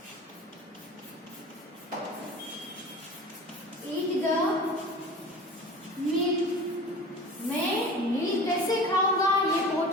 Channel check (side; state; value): both; normal; correlation 0.38